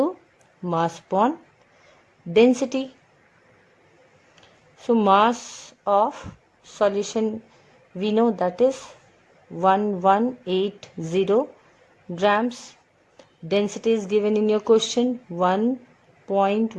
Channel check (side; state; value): both; identical; correlation 1.00